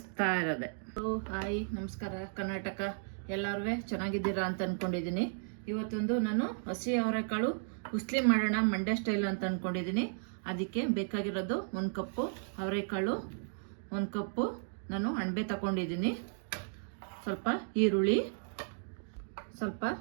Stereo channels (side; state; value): left; silent; digital silence